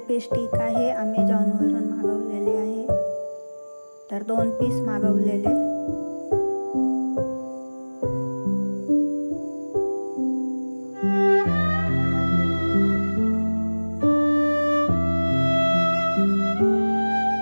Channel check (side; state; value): both; inverted; correlation -1.00